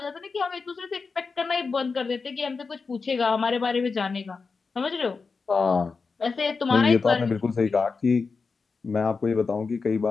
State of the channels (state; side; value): quieter; right; 4.7 dB